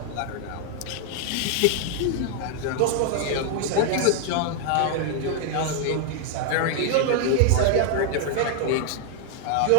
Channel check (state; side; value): different; both; correlation 0.00